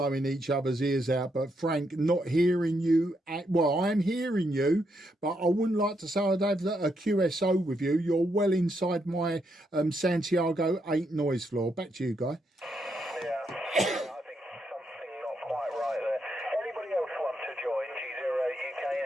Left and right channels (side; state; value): both; normal; correlation 0.79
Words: each other's ears out. But Frank, not hearing you. Well, I'm hearing you, but I wouldn't like to say I'd have a QSO with you. You're well inside my Santiago 8 noise floor. Back to you, Guy.